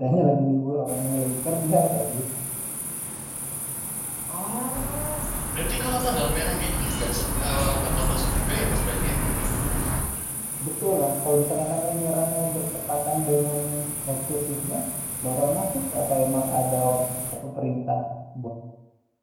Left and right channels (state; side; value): identical; both; correlation 1.00